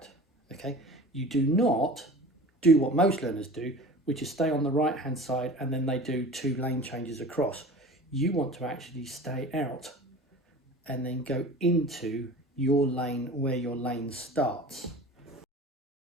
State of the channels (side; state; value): both; normal; correlation 0.38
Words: Okay, you do not do what most learners do, which is stay on the right hand side and then they do 2 lane changes across. You want to actually stay out and then go into your lane where your lane starts.